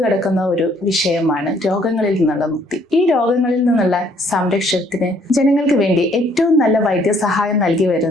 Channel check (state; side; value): normal; both; correlation 0.64